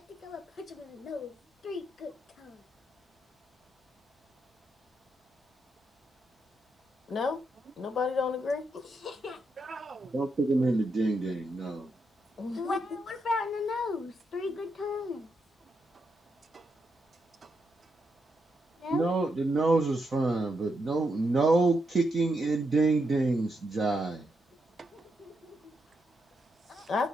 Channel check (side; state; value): both; normal; correlation 0.82